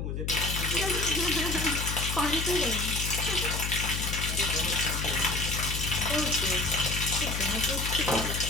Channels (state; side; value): noise; left; hum, 3 dB below the sound